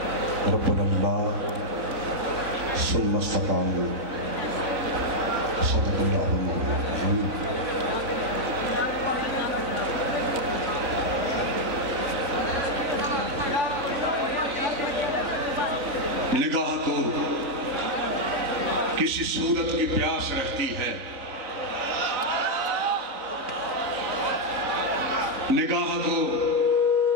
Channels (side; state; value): left; late; 3.9 ms